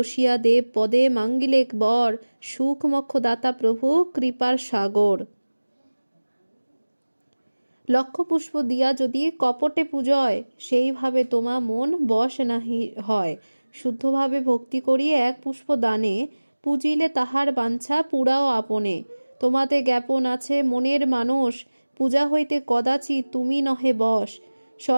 দেব পদে মাঙ্গিলেক বর, সুখ মক্ষ দাতা প্রভু কৃপার সাগর। লক্ষ পুষ্প দিয়া যদি কপটে পূজয়, সেইভাবে তোমা মন বশ নাহি হয়। শুদ্ধভাবে ভক্তি করি এক পুষ্প দানে, পূজিলে তাহার বাঞ্ছা পুরাও আপনে। তোমাতে জ্ঞাপন আছে মনের মানস, পূজা হইতে কদাচি তুমি নহে বশ।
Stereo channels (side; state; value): both; inverted; correlation -1.00